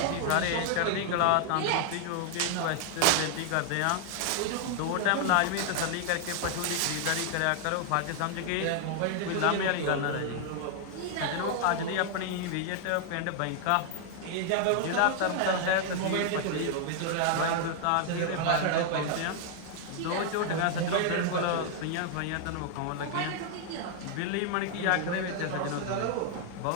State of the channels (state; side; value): different; both; correlation 0.00